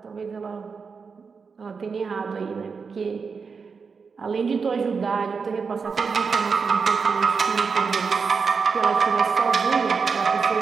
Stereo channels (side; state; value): left; quieter; 5.3 dB